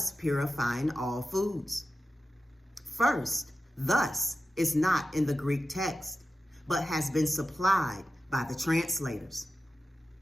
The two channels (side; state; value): both; normal; correlation 0.92